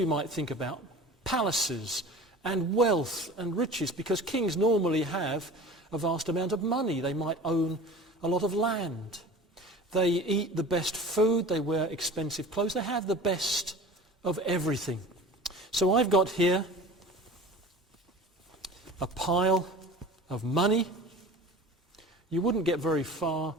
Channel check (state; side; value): normal; both; correlation 0.39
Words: might think about palaces and wealth and riches, because kings normally have a vast amount of money. They might own a lot of land. They eat the best food. They wear expensive clothes. They have the best of everything. So I've got here a pile of money. You wouldn't get very far